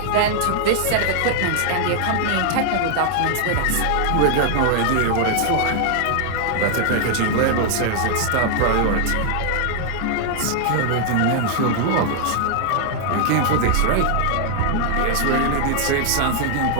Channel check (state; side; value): different; both; correlation 0.00